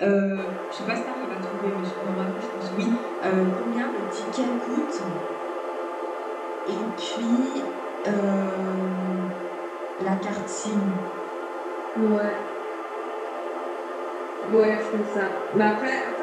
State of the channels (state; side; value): identical; both; correlation 1.00